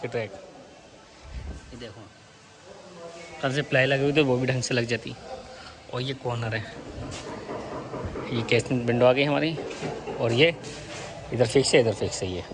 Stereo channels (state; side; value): identical; both; correlation 1.00